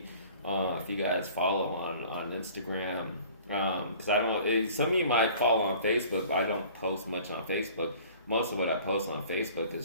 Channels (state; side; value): inverted; both; correlation -0.49